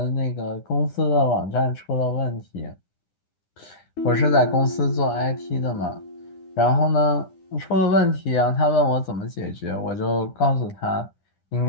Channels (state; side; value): late; right; 9.9 ms